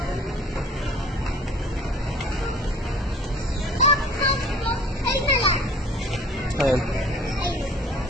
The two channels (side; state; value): both; normal; correlation 0.48